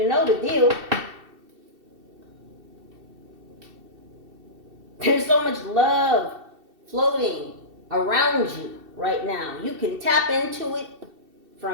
know the deal. There's so much love floating around you right now. You can tap into it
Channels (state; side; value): late; left; 2.7 ms